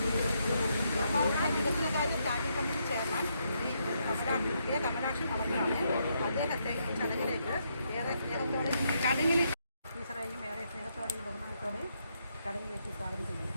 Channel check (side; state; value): both; inverted; correlation -0.77